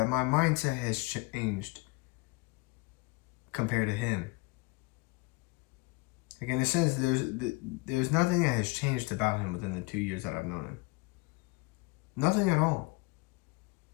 my mindset has changed compared to him. Like, in a sense, there's nothing that has changed about him within the 2 years that I've known him. Nothing at all.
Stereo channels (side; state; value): right; quieter; 25.6 dB